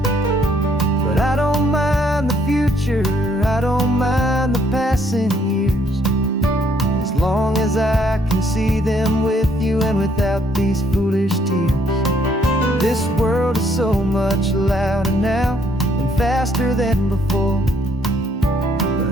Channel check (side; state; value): both; normal; correlation 0.67